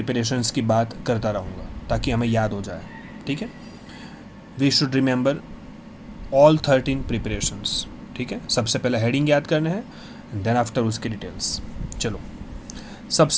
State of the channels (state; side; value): identical; both; correlation 1.00